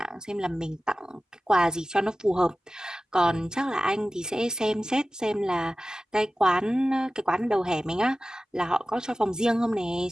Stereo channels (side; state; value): both; normal; correlation 0.96